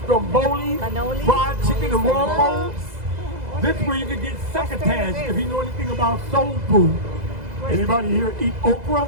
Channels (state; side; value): late; left; 2.0 ms